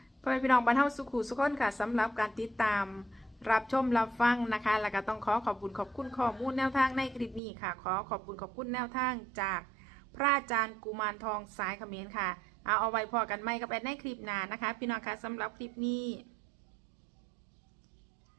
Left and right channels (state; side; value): drops out; left; at 7.4 s